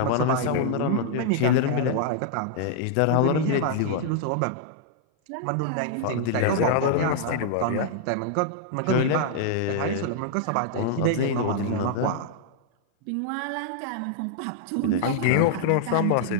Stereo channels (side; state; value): both; different; correlation -0.01